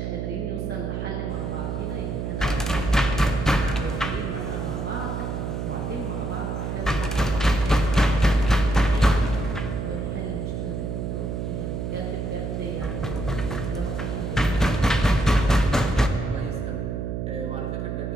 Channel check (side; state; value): right; noise; hum, 3 dB below the sound